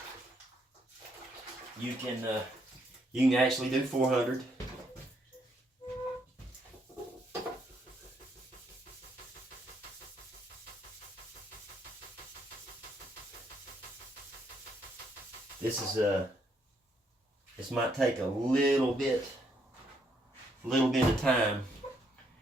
You can actually do 400. this might take a little bit of time.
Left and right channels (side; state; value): both; normal; correlation 0.73